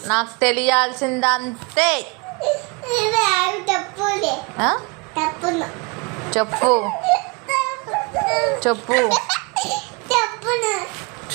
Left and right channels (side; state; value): left; quieter; 29.5 dB